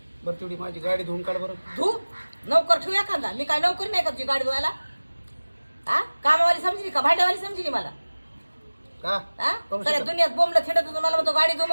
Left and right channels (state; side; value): inverted; both; correlation -1.00